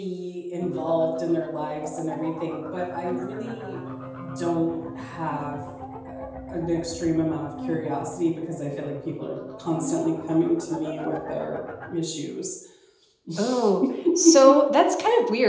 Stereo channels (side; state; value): both; identical; correlation 1.00